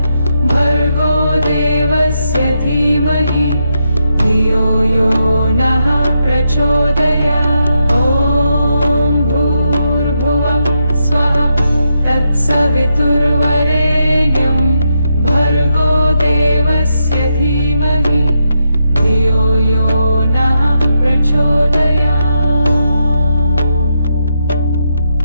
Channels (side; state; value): both; inverted; correlation -0.82